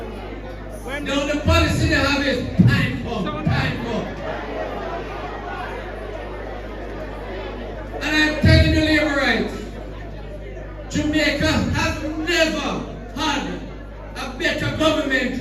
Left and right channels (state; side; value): identical; both; correlation 1.00